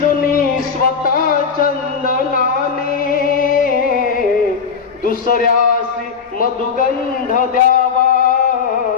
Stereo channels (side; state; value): right; quieter; 6.1 dB